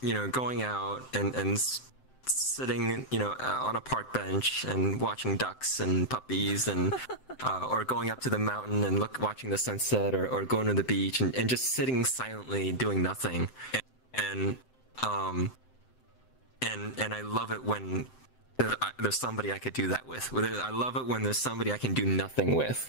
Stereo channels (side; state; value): right; late; 7.8 ms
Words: out and sitting, on a park bench and watching ducks and puppies and or going up to the mountain and watching the sunset, or going to the beach and just sitting silently doing nothing. And um and I love it when there's somebody I could do that with. I love it when there's somebody I can do nothing